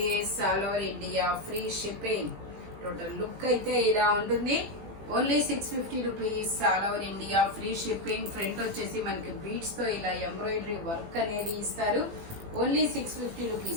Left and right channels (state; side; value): late; left; 18 ms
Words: All over India free shipping. Total look అయితే ఇలా ఉంటుంది. Only 650 rupees. All over India free shipping. Front వచ్చేసి మనకి బీడ్స్ తో ఇలా ఎంబ్రాయిడరీ వర్క్ అనేది ఇస్తారు. ఓన్లీ 650